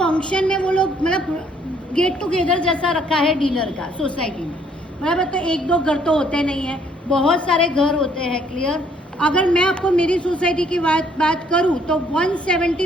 में वो लोग मतलब गेट टुगेदर जैसा रखा है डिनर का सोसाइटी में, बराबर। तो एक दो घर तो होते नहीं है, बहुत सारे घर होते हैं, क्लियर। अगर मैं आपको मेरी सोसाइटी की बात करूं तो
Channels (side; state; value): both; normal; correlation 0.64